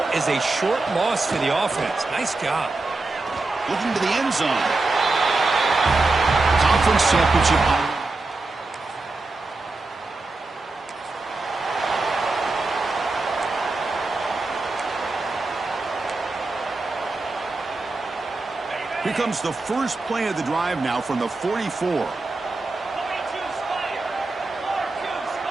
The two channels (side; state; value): left; quieter; 3.3 dB